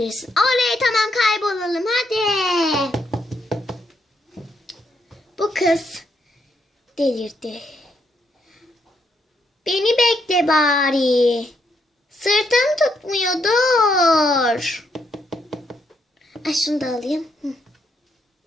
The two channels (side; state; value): both; normal; correlation 0.76